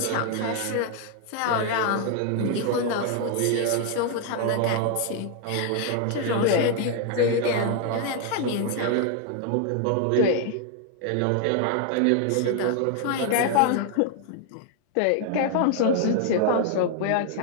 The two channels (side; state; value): both; different; correlation 0.00